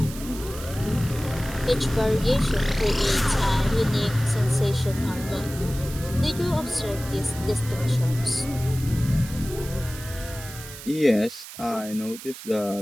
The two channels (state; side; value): noise; right; hiss, 14 dB below the sound